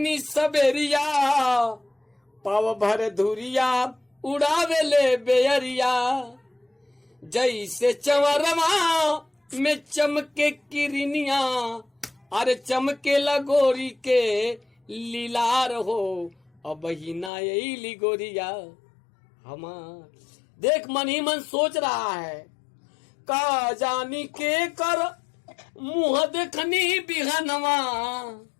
सबेरिया, पाव भर धुरिया उड़ावे ले बेअरिया। जैसे चवरमा में चमके किरनिया, अरे चमके लगोरी के लीलार हो, अब ही ना यही गोरिया हमार। देख मन ही मन सोच रहा है, का जानी के कर मुँह देखनी बिहनवा,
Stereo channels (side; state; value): right; drops out; at 17.3 s